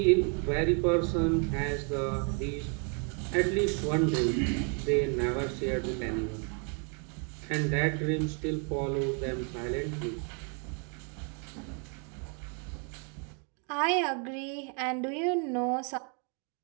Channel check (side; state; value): left; quieter; 39.0 dB